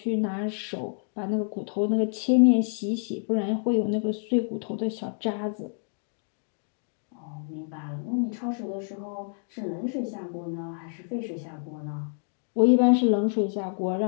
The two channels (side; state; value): right; silent; 59 dB below the other